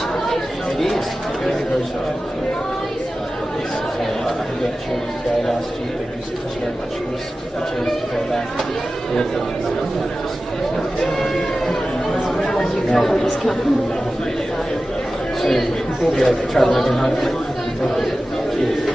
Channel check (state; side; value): normal; both; correlation 0.95